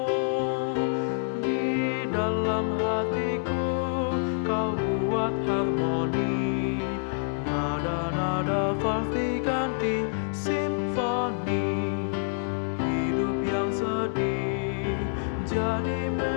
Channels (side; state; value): right; silent; digital silence